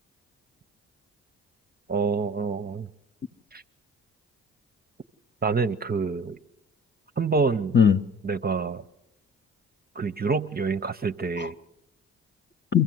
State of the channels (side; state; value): both; normal; correlation 0.45